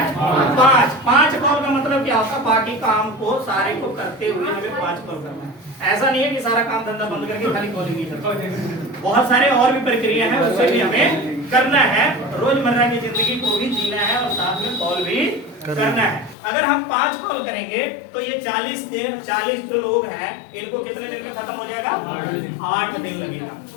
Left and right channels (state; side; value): drops out; right; at 16.4 s